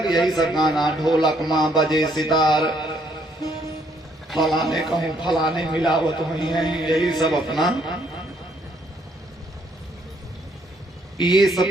यही सब गाना, ढोलक माँ बजे सितार, फलाने कहूँ फलाने मिलावत हुई है, यही सब अपना। ये सब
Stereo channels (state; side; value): normal; both; correlation 0.69